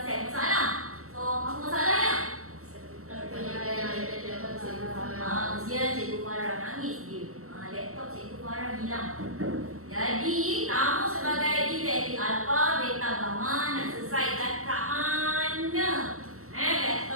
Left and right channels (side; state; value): left; late; 0.63 ms